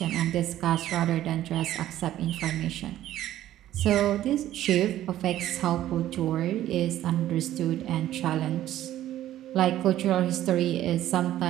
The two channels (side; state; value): left; quieter; 13.1 dB